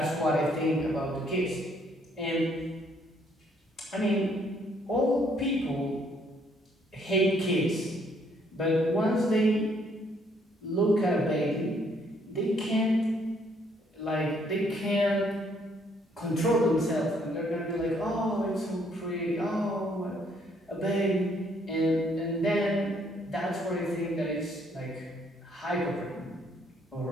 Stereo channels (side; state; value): both; normal; correlation 0.67